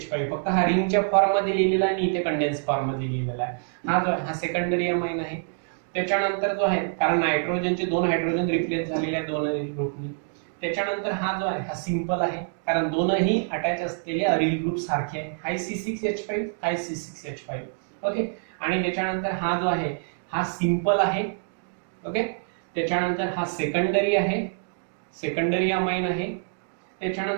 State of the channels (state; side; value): silent; left; digital silence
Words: फक्त हा रिंगच्या फॉर्म मध्ये लिहिलेला आहे आणि इथे कंडेन्स फॉर्म मध्ये लिहिलेला आहे. हा जो आहे हा सेकंडरी अमाइन आहे. त्याच्यानंतर जो आहे कारण नायट्रोजनचे 2 हायड्रोजन रिप्लेस झालेले आहेत 2 अरिल ग्रुपनी. त्याच्यानंतर हा जो आहे हा सिंपल आहे कारण दोनही अटॅच असलेले अरिल ग्रुप सारखे आहे. हा C6H5, हा C6H5. ओके. आणि त्याच्यानंतर हा जो आहे हा सिंपल आहे. ओके. त्याच्यानंतर हा सेकंडरी आहे, सेकंडरी अमाइन आहे.